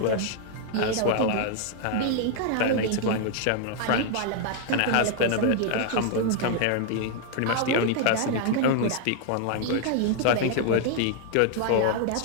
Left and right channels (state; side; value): different; both; correlation 0.00